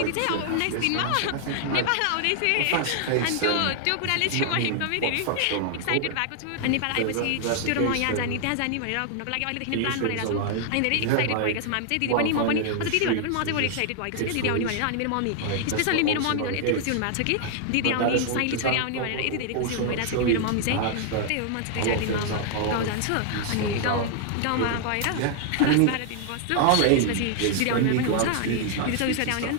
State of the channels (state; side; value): different; both; correlation 0.00